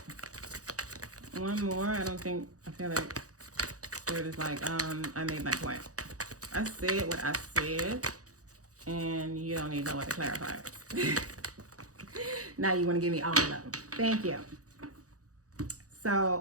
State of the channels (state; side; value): late; left; 0.66 ms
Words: One more. I feel like Spirit is like, I made my point. I said what I said, and you don't need no way to clarify it. Now you want to give me all of them. Thank you.